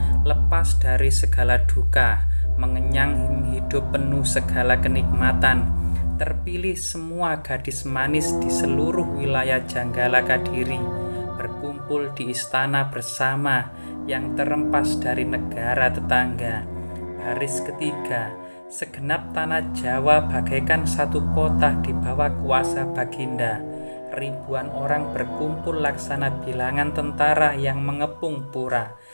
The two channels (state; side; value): inverted; both; correlation -1.00